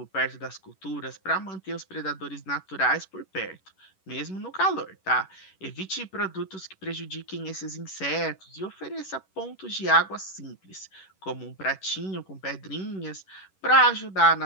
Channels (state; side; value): late; right; 11 ms